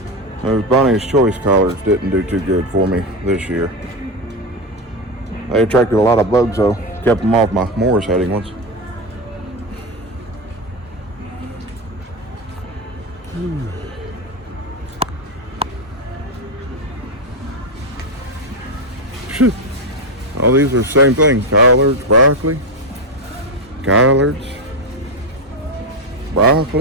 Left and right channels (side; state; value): both; normal; correlation 0.11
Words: Those Bonnie's Choice collards didn't do too good for me this year. They attracted a lot of bugs though. Kept them off my Morris Heading ones. All these are the same thing. Collards, broccoli, collards,